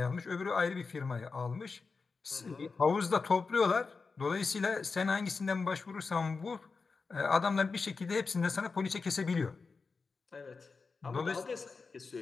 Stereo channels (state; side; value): quieter; right; 4.5 dB